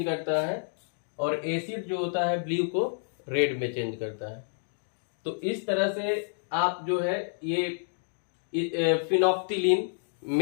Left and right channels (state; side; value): silent; right; digital silence